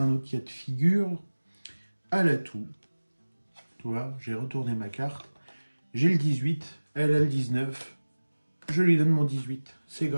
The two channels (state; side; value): inverted; both; correlation -1.00